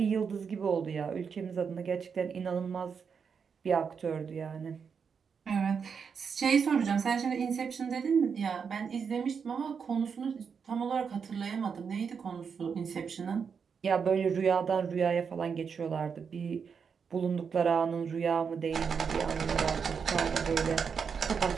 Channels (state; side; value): quieter; left; 6.3 dB